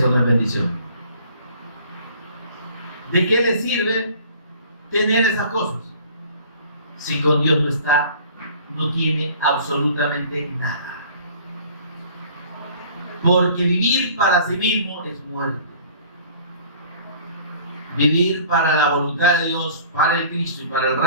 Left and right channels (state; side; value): inverted; both; correlation -0.50